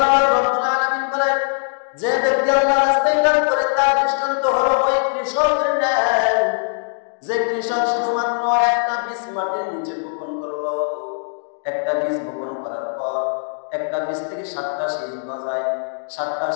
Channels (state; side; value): silent; right; digital silence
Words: রাব্বুল আলামিন বলেন, যে ব্যক্তি আল্লাহর রাস্তায় দান করে, তার দৃষ্টান্ত হলো ওই কৃষকের ন্যায়, যে কৃষক শুধুমাত্র একটা বীজ মাটির নিচে বপন করলো। একটা বীজ বপন করার পর একটা বীজ থেকে 7টা শীষ গজায়, 7টা